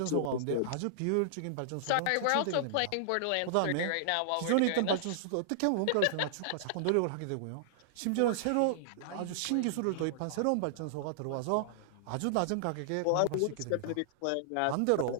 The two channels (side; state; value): both; different; correlation -0.01